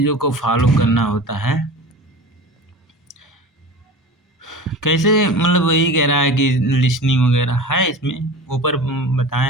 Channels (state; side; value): normal; both; correlation 0.34